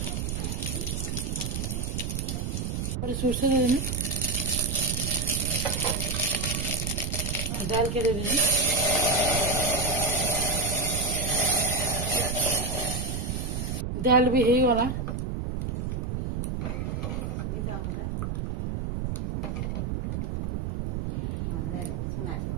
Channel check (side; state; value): right; noise; rumble, 3 dB below the sound